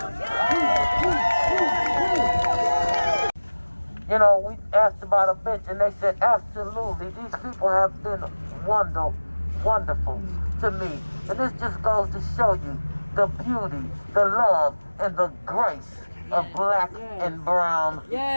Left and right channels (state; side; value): inverted; both; correlation -1.00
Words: You know, we asked about a bench and they said, absolutely, these people have been wonderful to me. And this just goes to show you the beauty, the love, and the grace of black and brown